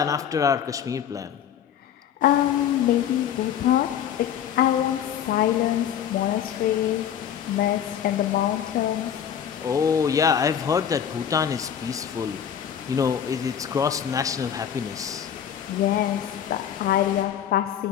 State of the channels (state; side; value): quieter; right; 9.2 dB